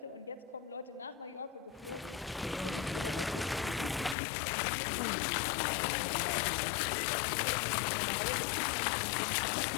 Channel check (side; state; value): right; drops out; at 4.2 s